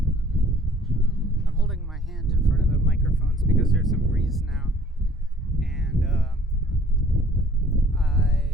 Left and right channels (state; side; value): normal; both; correlation 0.55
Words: I'm holding my hand in front of the microphones because there's some breeze now, and